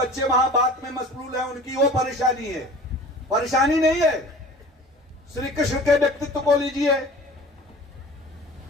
वहां बात में मशगूल हैं, उनकी वो परेशानी है। परेशानी नहीं है। श्री कृष्ण के व्यक्तित्व को लीजिए।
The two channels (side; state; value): both; normal; correlation 0.42